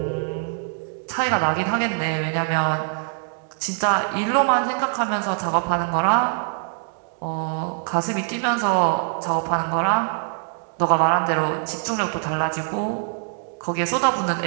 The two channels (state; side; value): silent; left; 63 dB below the other